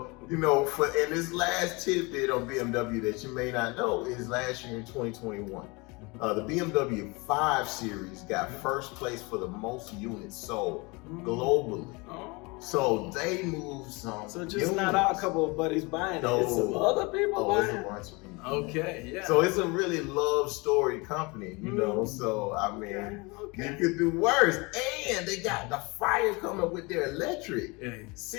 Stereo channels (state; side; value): quieter; right; 26.8 dB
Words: you know, and this last tidbit on BMW that you may not know is last year in 2021. The BMW 5 Series got first place for the most units sold globally. Oh. So they moved some. So just units. not our couple of buddies buying it, it's some other people It's buying a it. bunch of people. Okay, yeah. So it's a really love story company, you know. So I mean, you could do worse. And they got the fire coming with their electric